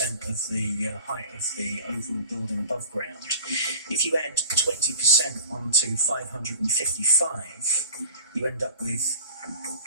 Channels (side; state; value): both; inverted; correlation -0.41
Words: of the height of the overall building above ground. If you add 20% onto 555, you end up with